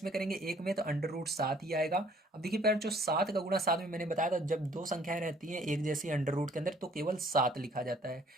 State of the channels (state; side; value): normal; both; correlation 0.59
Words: करेंगे एक में, तो अंडर रूट 7 ही आएगा। अब देखिए पैर जो 7 का गुणा 7 में, मैंने बताया था जब दो संख्याएं रहती हैं एक जैसी अंडर रूट के अंदर तो केवल 7 लिखा जाता है,